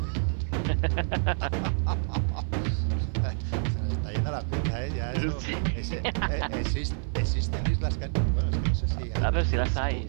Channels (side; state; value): left; silent; 55 dB below the other